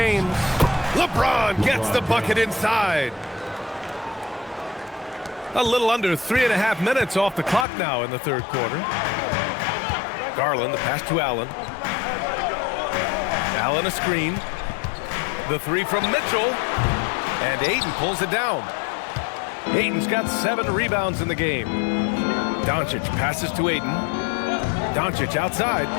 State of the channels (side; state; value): right; drops out; at 7.7 s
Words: LeBron gets the bucket inside. A little under 3.5 minutes off the clock now in the third quarter. Garland, the pass to Allen. Allen a screen. The 3 from Mitchell. And Ayton pulls it down. Ayton's got 7 rebounds in the game. Doncic passes to Ayton. Doncic outside.